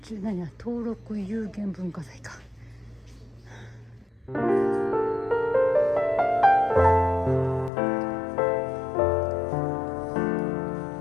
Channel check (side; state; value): right; drops out; at 7.7 s